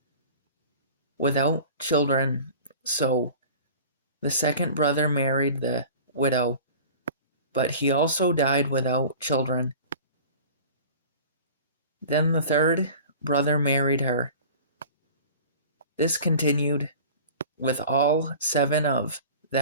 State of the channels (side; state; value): both; inverted; correlation -0.41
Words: without children, so the second brother married the widow, but he also died without children. Then the third brother married her. This continued with all 7 of